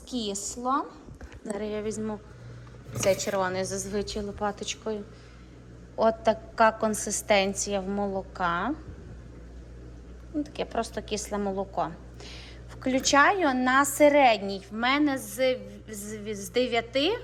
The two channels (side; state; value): both; identical; correlation 1.00